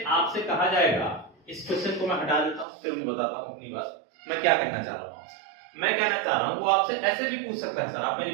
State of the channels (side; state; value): left; drops out; at 2.7 s